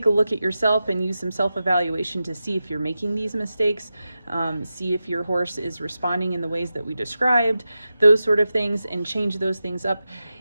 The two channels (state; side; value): inverted; both; correlation -0.92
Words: a look at yourself and use some self-evaluation to see if you're making these mistakes, see if your horse is responding in the ways that we described, those sort of things, and change those things up.